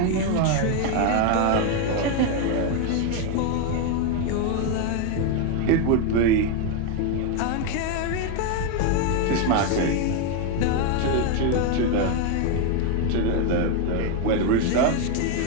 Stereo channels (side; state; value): both; different; correlation 0.01